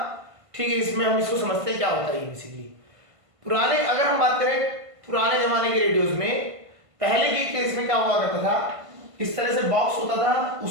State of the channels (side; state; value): left; late; 1.5 ms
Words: ठीक है, इसमें हम इसको समझते हैं क्या होता है। बेसिकली पुराने, अगर हम बात करें पुराने जमाने के रेडियोज में, पहले के केस में क्या हुआ करता था, इस तरह से बॉक्स होता था,